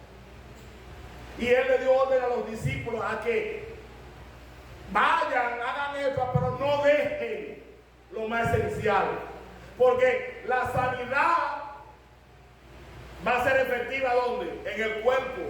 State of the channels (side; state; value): both; identical; correlation 1.00